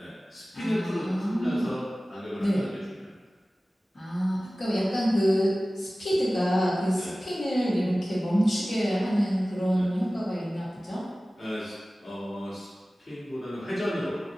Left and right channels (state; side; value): normal; both; correlation 0.97